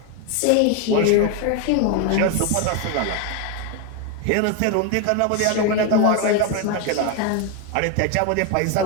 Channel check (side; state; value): both; different; correlation 0.01